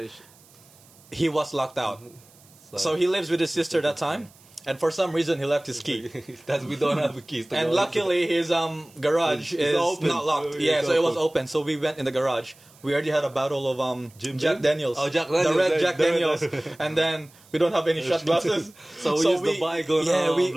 he was locked out. So he lives with his sister that time, and for some reason he left his key. That's we don't have a keys. To And go. luckily his garage It's is open. not locked. It's Yeah, so it was open. open. So we went in the garage. We already had a bottle of Jim Jack Beam? Daniels. Oh, Jack The Daniels, red right, Jack the red- Daniels. And then we don't have any shot glasses. So we used the bygone, Yeah, we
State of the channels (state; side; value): noise; right; hiss, 27 dB below the sound